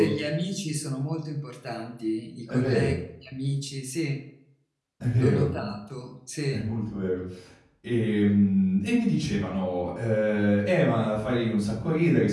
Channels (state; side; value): identical; both; correlation 1.00